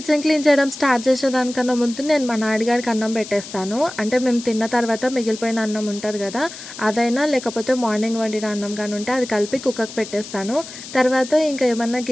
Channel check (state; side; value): noise; left; hiss, 13 dB below the sound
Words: క్లీన్ చేయడం స్టార్ట్ చేసేదానికన్నా ముందు నేను మా నాన్నగారికి అన్నం పెట్టేస్తాను. అంటే మేము తిన్న తర్వాత మిగిలిపోయిన అన్నం ఉంటుంది కదా, అదైనా లేకపోతే మార్నింగ్ వండిన అన్నం కానీ ఉంటే అది కలిపి కుక్కకు పెట్టేస్తాను. తర్వాత ఇంకా ఏమన్నా